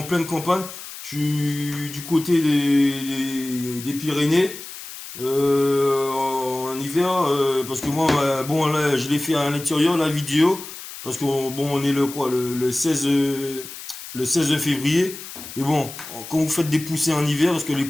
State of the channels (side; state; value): left; noise; hiss, 12 dB below the sound